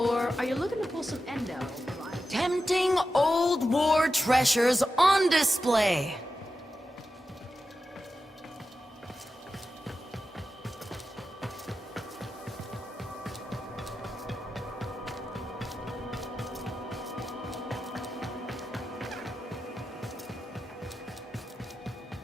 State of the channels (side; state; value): both; normal; correlation 0.91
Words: are you looking to pull some endo? Tempting old war treasures on display.